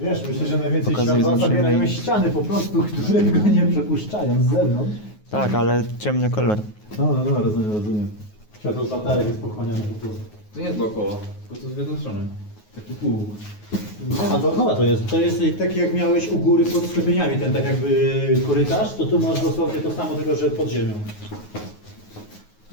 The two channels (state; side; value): late; right; 9.5 ms